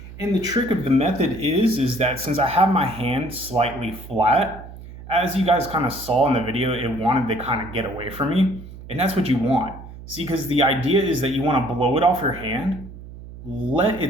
And the trick of the method is that since I have my hand slightly flat, as you guys kind of saw in the video, it wanted to kind of get away from me. And that's what you want. See, because the idea is that you want to blow it off your hand, let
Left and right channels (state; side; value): noise; right; hum, 15 dB below the sound